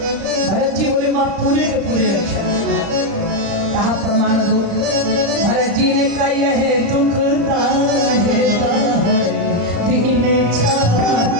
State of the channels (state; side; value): late; left; 35 ms